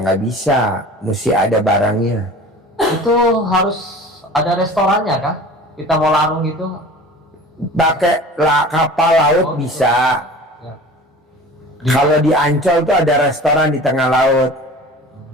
nggak bisa, mesti ada barangnya. Itu harus ada restorannya kah? Kita mau larung gitu? Pakai kapal laut bisa. Ya. Kalau di Ancol tuh ada restoran di tengah laut.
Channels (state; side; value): normal; both; correlation 0.40